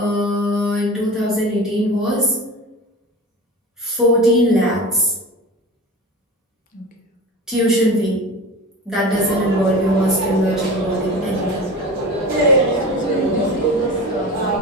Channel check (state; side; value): normal; both; correlation 0.32